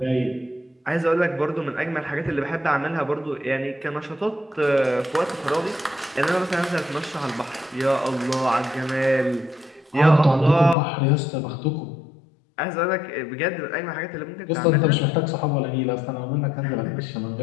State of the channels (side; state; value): right; drops out; at 10.8 s